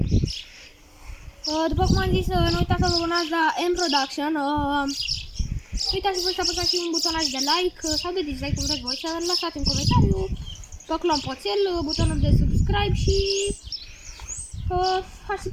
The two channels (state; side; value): identical; both; correlation 1.00